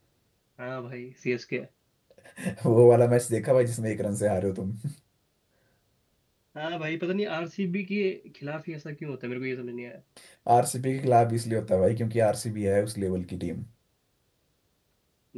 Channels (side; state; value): both; identical; correlation 1.00